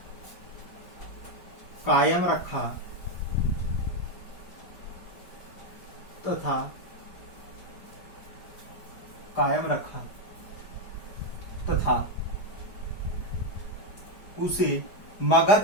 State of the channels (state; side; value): late; right; 4.8 ms